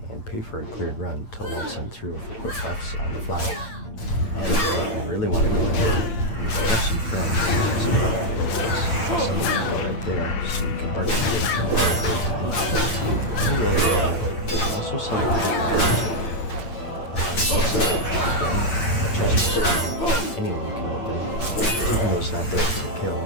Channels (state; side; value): late; right; 8.6 ms